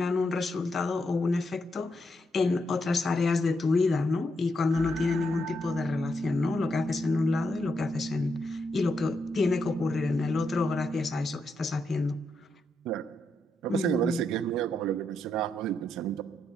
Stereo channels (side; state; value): both; normal; correlation 0.81